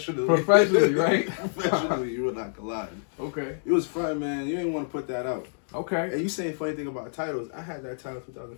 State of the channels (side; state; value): right; silent; digital silence